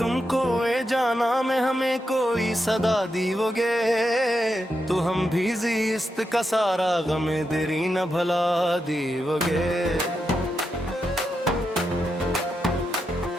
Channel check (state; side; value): normal; both; correlation 0.85